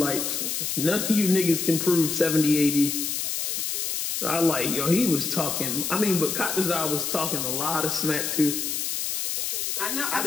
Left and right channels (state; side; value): noise; left; hiss, 1 dB below the sound